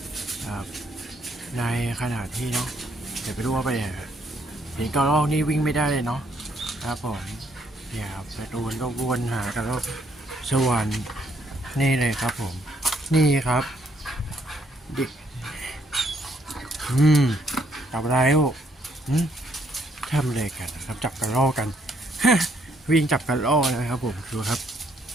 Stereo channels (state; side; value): normal; both; correlation 0.70